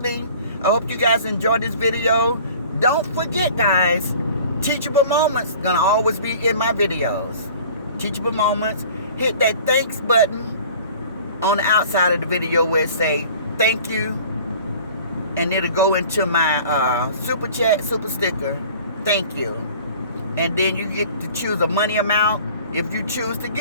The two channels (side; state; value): both; inverted; correlation -0.47